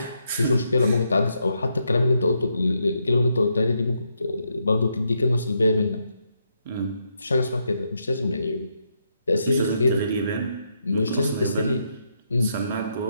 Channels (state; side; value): inverted; both; correlation -0.80